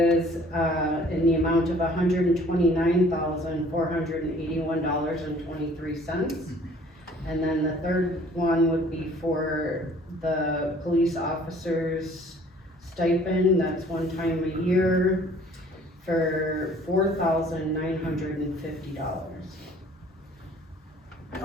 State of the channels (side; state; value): both; normal; correlation 0.54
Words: in the amount of $129,481.23. And then the third one would be for the police officers stipend, that's one time a year, for $4,950.